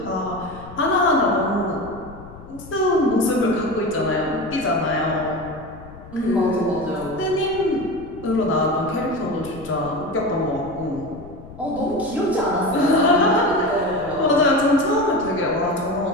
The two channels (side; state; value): left; noise; rumble, 17 dB below the sound